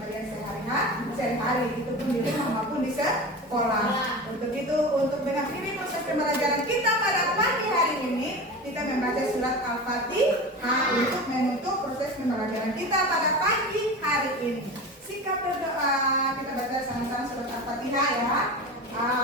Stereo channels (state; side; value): normal; both; correlation 0.29